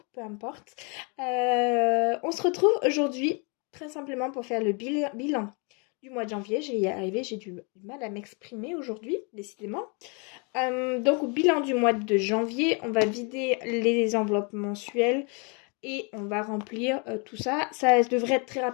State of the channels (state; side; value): quieter; right; 33.8 dB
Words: peu importe. On se retrouve aujourd'hui très simplement pour faire le bilan du mois de janvier. Je vais y arriver, j'ai du mal à m'exprimer aujourd'hui, décidément. Donc, au bilan du mois de janvier, on va vider les enveloppes mensuelles et on va remplir tout ça. Ça devrait être très